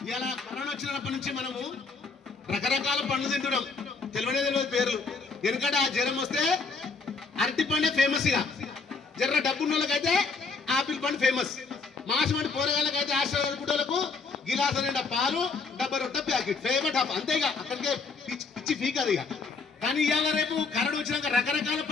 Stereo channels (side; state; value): right; quieter; 4.4 dB